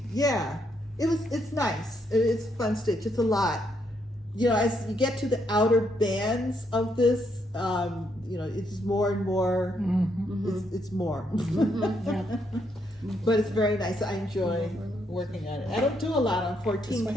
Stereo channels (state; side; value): normal; both; correlation 0.76